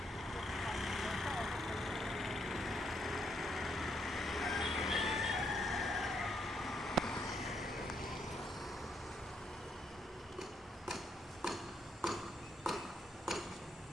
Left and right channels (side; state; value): both; normal; correlation 0.75